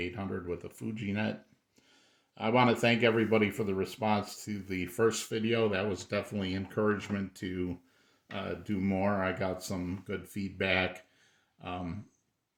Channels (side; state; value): both; identical; correlation 1.00